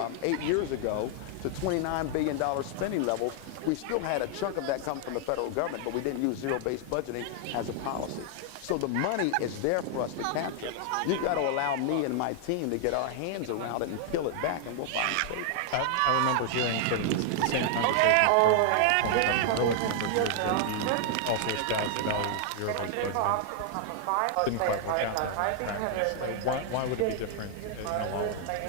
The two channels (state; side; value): different; both; correlation 0.00